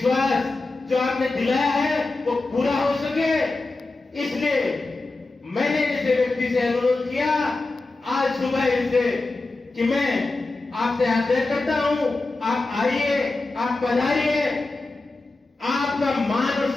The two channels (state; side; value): quieter; right; 3.3 dB